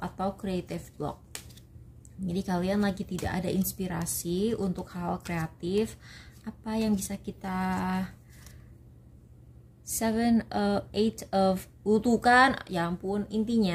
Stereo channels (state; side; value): identical; both; correlation 1.00